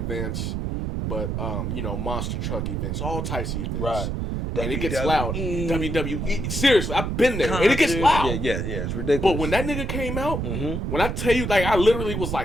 but monster truck events, all types of events. Right. And it gets loud. WWE. Seriously, I've been there. And it gets loud. Yeah, it's ridiculous. But when that nigga came out, when I tell you, like, I literally was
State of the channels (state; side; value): noise; right; rumble, 2 dB below the sound